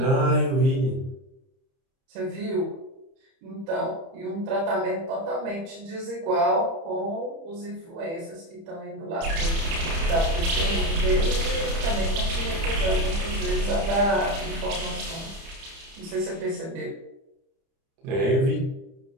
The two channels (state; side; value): late; left; 30 ms